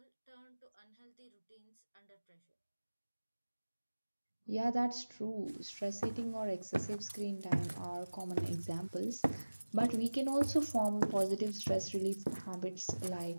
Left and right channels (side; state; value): both; inverted; correlation -1.00